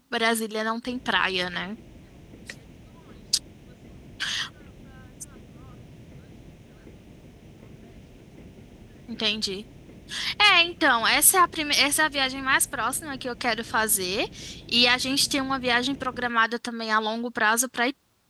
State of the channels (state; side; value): identical; both; correlation 1.00